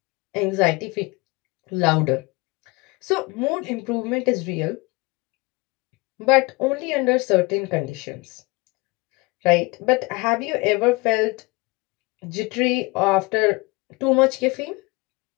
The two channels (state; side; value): quieter; right; 25.3 dB